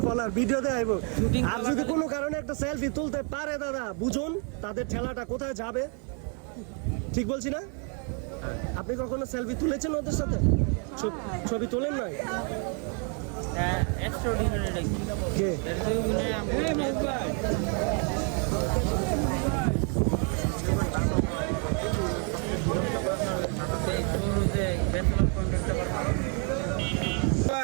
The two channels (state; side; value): quieter; left; 39.4 dB